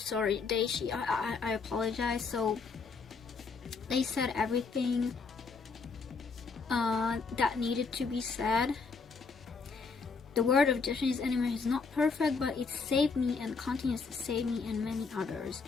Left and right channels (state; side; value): quieter; right; 4.8 dB